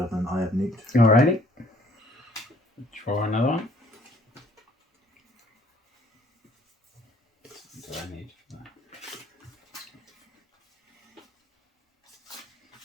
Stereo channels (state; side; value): normal; both; correlation 0.60